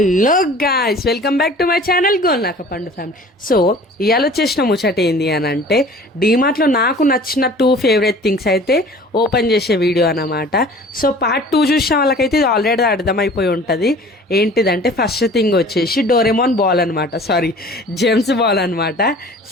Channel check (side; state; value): both; normal; correlation 0.46